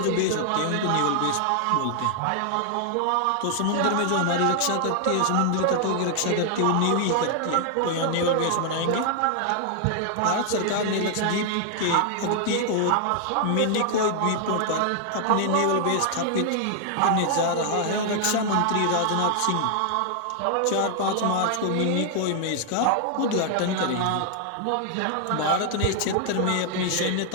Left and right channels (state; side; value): different; both; correlation 0.00